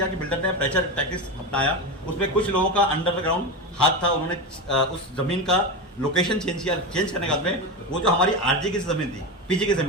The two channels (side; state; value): both; normal; correlation 0.18